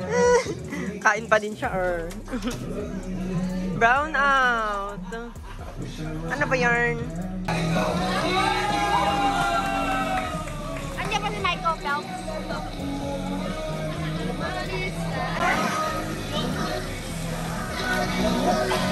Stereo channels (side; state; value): both; identical; correlation 1.00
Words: Kain pa din siya, Brown out. Ano ba yarn? Andiyan pa si Michael Phelps.